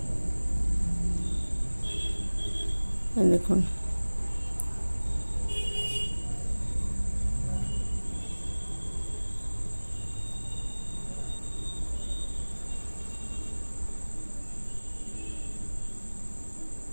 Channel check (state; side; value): inverted; both; correlation -1.00